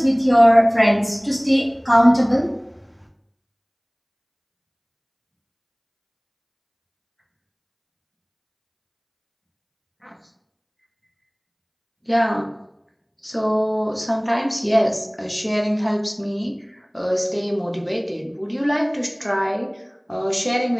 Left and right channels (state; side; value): identical; both; correlation 1.00